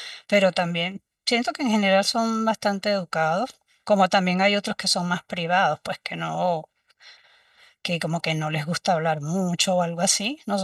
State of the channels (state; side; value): identical; both; correlation 1.00